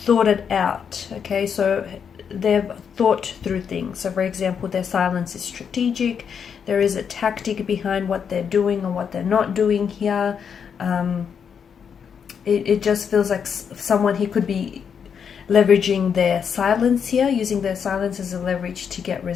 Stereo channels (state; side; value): quieter; right; 7.1 dB